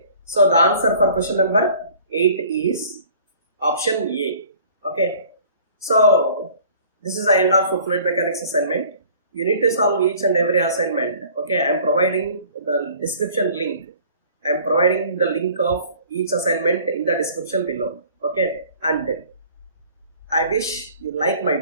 So the answer for question number 8 is option A. Okay. So this is the end of fluid mechanics assignment. You need to solve each and every assignment. Okay. I am providing the description link. I am providing the link of each assignment in the description below. Okay. And I wish you like my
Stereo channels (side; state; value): both; inverted; correlation -0.51